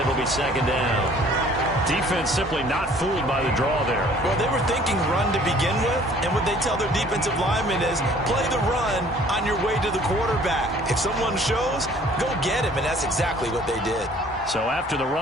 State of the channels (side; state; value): both; normal; correlation 0.54